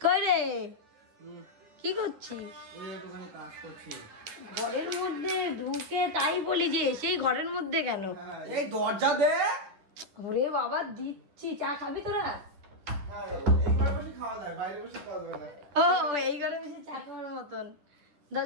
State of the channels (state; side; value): late; left; 10 ms